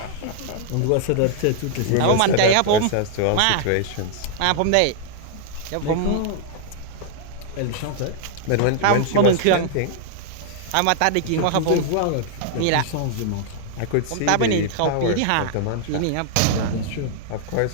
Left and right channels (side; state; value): both; different; correlation -0.01